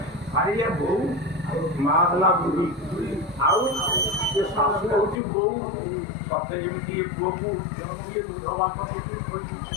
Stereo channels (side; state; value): right; drops out; at 5.2 s